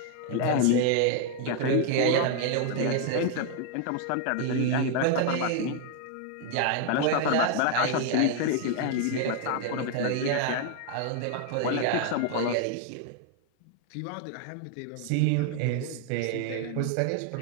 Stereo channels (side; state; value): both; different; correlation 0.00